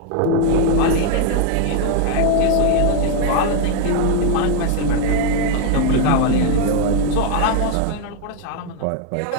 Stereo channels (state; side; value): different; both; correlation 0.01